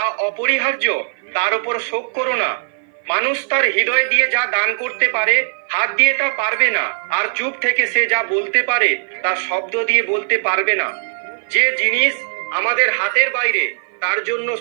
অপরিহার্য তার উপর শোক করো না। মানুষ তার হৃদয় দিয়ে যা দান করতে পারে হাত দিয়ে তা পারবে না, আর চুপ থেকে সে যা বলতে পারে তা শব্দ দিয়ে বলতে পারবে না। যে জিনিস আমাদের হাতের বাইরে তার জন্য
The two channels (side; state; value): left; silent; 56 dB below the other